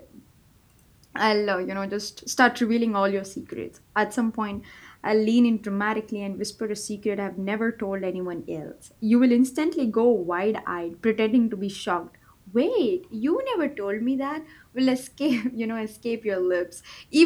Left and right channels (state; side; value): identical; both; correlation 1.00